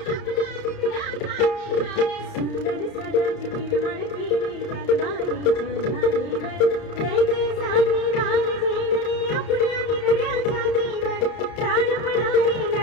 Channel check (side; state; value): right; late; 31 ms